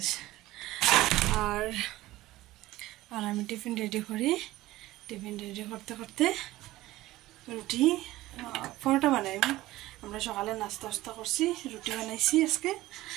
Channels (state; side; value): quieter; left; 17.1 dB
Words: আর আর আমি টিফিন রেডি করি, টিফিন রেডি করতে করতে রুটি পরোটা বানাই। আমরা সকালে নাস্তা টাস্তা করছি, রুটি বানাইছি আজকে।